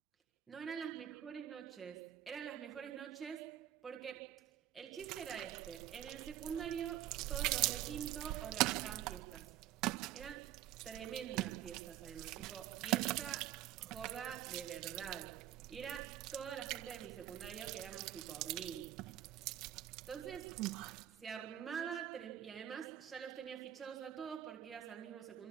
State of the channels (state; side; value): quieter; left; 12.1 dB